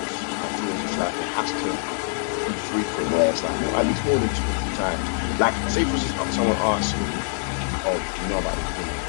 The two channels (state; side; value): silent; right; 62 dB below the other